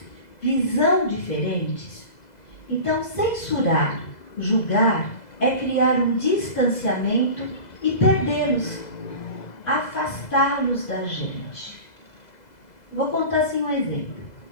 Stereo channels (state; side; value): late; right; 2.0 ms